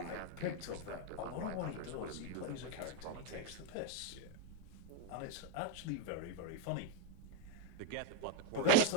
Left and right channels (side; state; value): both; different; correlation 0.01